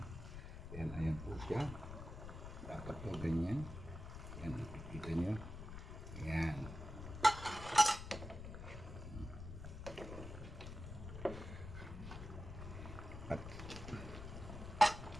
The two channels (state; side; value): noise; left; rumble, 9 dB below the sound